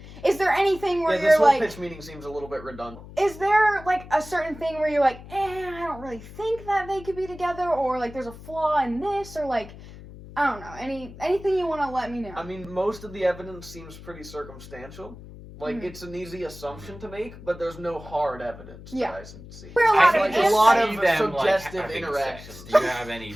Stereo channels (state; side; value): noise; left; hum, 16 dB below the sound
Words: Is there anything where this you're whole like... pitch meeting seems a little bit redundant. Is there, like, a certain thing where you're like, I don't really think that they could be together, or, like, there's a flaw in this, or, like, I don't know, anything you want to let me know? I mean, most of the evidence seems pretty circumstantial. Like, it's an easy assumption to make, but there's no hard evidence that I see. We're A lot of them, suggestive having interactions. sex. Do you have any